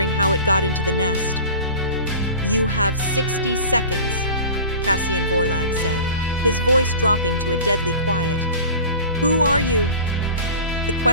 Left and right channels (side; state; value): both; inverted; correlation -0.38